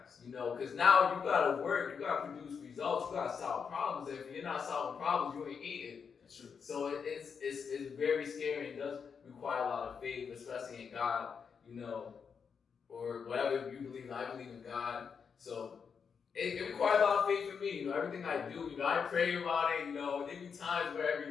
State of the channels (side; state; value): right; quieter; 6.3 dB